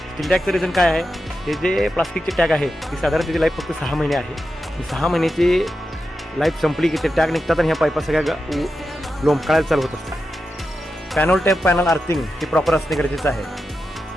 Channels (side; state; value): both; normal; correlation 0.89